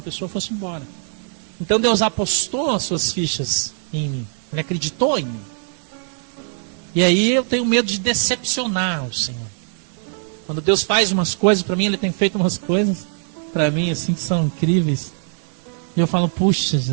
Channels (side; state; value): left; silent; digital silence